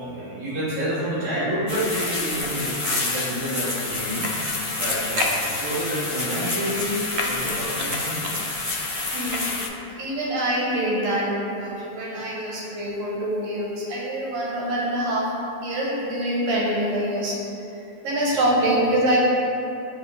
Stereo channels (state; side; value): late; left; 11 ms